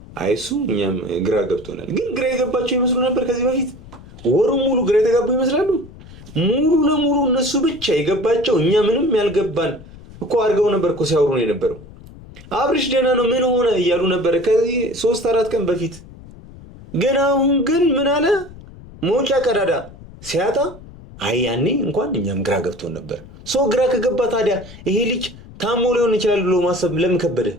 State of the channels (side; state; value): left; noise; rumble, 19 dB below the sound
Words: አይሱ እኛም ግራ ገብቶናል። ግን ግራ የገባቸው ይመስሉ ነበር ከዚህ በፊት ወሩ ሙሉ ግራ የተጋቡ ይመስላሉ። ሙሉ ለሙሉ እነሱ ብቻ የገባቸው እኛ ምንም ያልገባን እኮ አድርገው ነበር እኮ ሲያወሩ ነው የነበረው። አብርሽ ደህና ነው ምን ሆነ እያሉ ነበር ከዚህ 3-4 ቀን በፊት። ግን አሁን ግን ምን አለ መውጫ ቀዳዳ ሲያጣ ያኔ እንኳን እኛም ግራ ገብቶን ነበር። ሰው ግራ ከገባ ታዲያ ይሄ ልጅ ታሞ ሊሆን ይችላል ብሎ ማሰብ ለምን ከበደ?